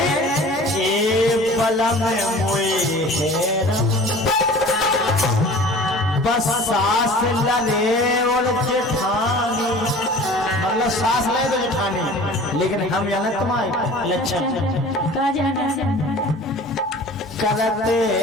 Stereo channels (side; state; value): both; normal; correlation 0.43